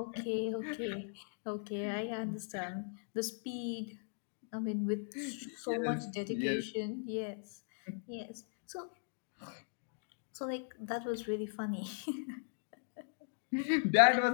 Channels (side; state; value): right; silent; digital silence